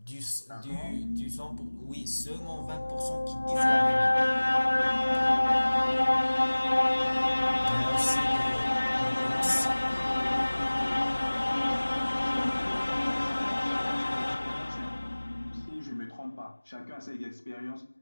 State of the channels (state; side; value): inverted; both; correlation -1.00